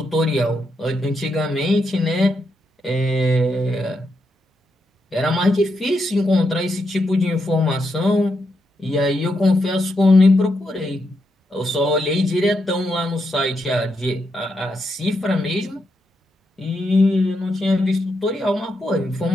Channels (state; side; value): normal; both; correlation 0.82